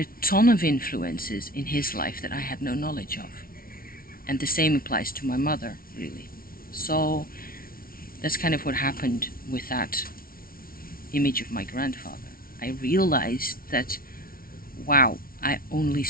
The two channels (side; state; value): right; late; 0.43 ms